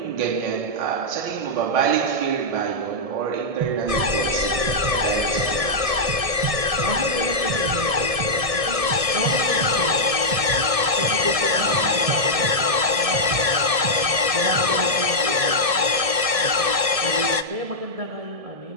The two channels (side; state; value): left; late; 1.7 ms